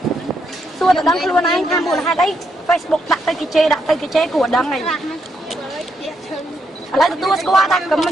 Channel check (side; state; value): both; normal; correlation 0.78